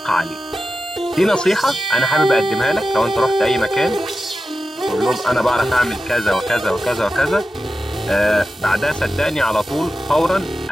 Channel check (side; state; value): both; normal; correlation 0.92